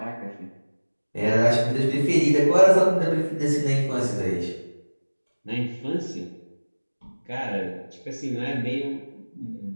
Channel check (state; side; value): inverted; both; correlation -1.00